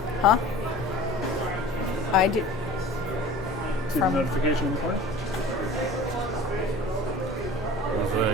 Huh? I do. See the From- notification in the corner? I was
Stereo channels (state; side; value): noise; left; hum, 20 dB below the sound